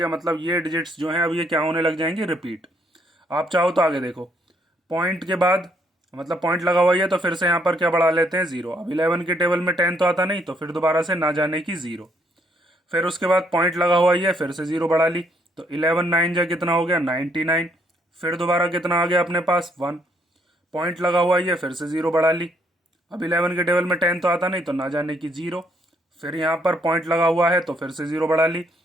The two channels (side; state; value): both; normal; correlation 0.70